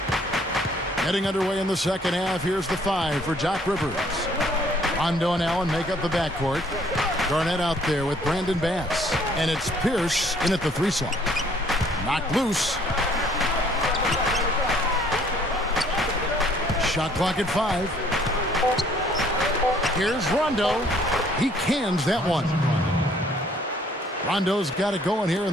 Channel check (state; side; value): normal; both; correlation 0.61